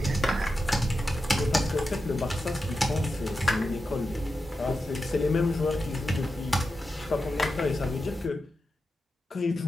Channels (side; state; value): both; normal; correlation 0.90